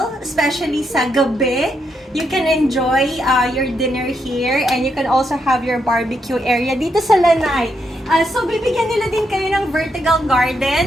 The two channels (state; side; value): normal; both; correlation 0.80